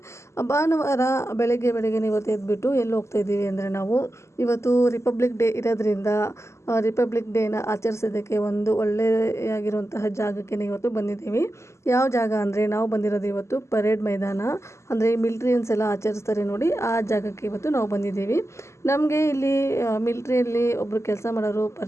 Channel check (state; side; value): late; right; 0.13 ms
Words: ಭಾನುವಾರ ಬೆಳಗ್ಗೆ ಇವತ್ತು ಎದ್ಬಿಟ್ಟು ಎಲ್ಲಿ ಹೋಗ್ತಾ ಇದ್ದೀವಿ ಅಂದರೆ, ನಾವು ಇವತ್ತು ರಿಪಬ್ಲಿಕ್ ಡೇ ಇರೋದ್ರಿಂದ ರಿಪಬ್ಲಿಕ್ ಡೇನ ಆಚರಿಸೋದಕ್ಕೆ ಒಂದು ಒಳ್ಳೆಯಾಗಿರುವಂತಹ ಜಾಗಕ್ಕೆ ಇವತ್ತು ಬಂದಿದ್ದೀವಿ. ಯಾವ ಜಾಗ ಅಂದರೆ, ನಾವು ಬಂದಿರೋದು ಇವತ್ತು ಪರೇಡ್ ಮೈದಾನ, ಅಂದರೆ ಮಿಲ್ಟ್ರಿಯನ್ಸ್ ಎಲ್ಲ ಆಚರಿಸ್ತಾರೆ ನೋಡಿ, ಆ ಜಾಗಕ್ಕೆ ಇವತ್ತು ನಾವು ಬಂದಿದ್ದೀವಿ. ನಮಗೆ ಇಲ್ಲಿ ಮಿಲ್ಟ್ರಿಯಲ್ಲಿ ಒಬ್ಬರು ಕೆಲಸ ಮಾಡೋರು